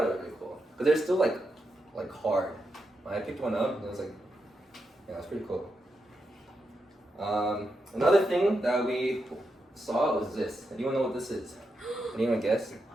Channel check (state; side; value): normal; both; correlation 0.85